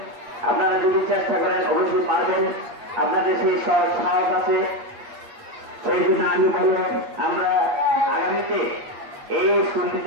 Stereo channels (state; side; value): late; left; 8.3 ms